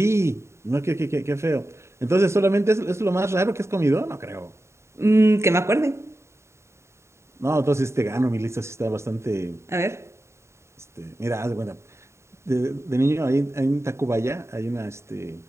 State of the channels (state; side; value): late; left; 0.13 ms